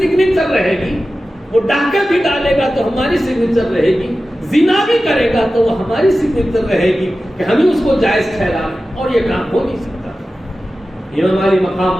رہے گی۔ وہ ڈاکہ بھی ڈالے گا تو ہماری سگنیچر رہے گی، زنا بھی کرے گا تو وہ ہماری سگنیچر رہے گی کہ ہمیں اس کو جائز ٹھہرا، اور یہ کام ہو نہیں سکتا۔ امام علی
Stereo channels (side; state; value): both; normal; correlation 0.94